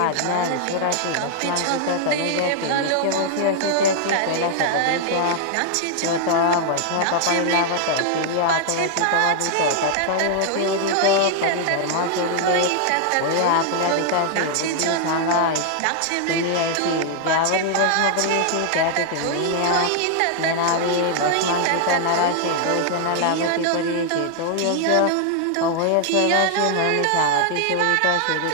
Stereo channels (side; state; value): both; different; correlation 0.00